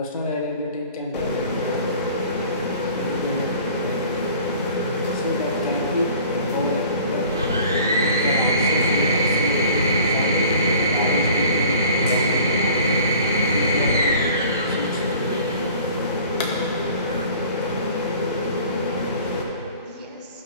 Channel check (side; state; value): both; inverted; correlation -0.47